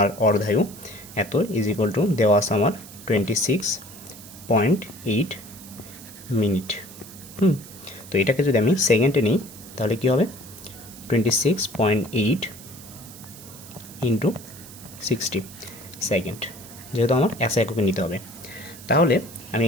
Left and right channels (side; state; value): right; noise; hiss, 17 dB below the sound